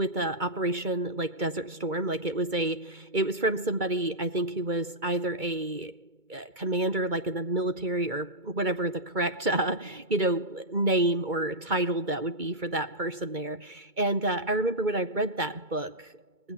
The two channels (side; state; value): left; late; 2.2 ms